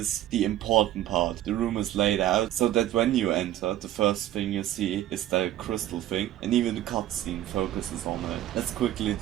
the important part. The room is laid out so that when you enter, the first thing you see is the crystal thing, and even the cutscene focuses on it. Let's quickly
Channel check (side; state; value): left; quieter; 13.2 dB